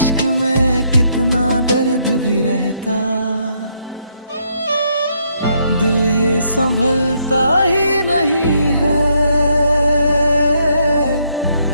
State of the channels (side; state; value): both; inverted; correlation -0.73